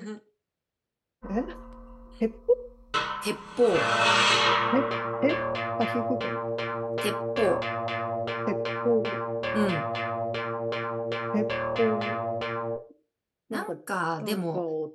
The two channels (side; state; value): both; identical; correlation 1.00